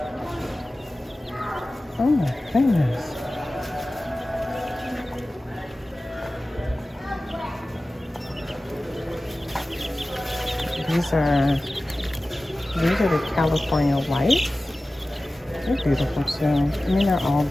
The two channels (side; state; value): both; normal; correlation 0.96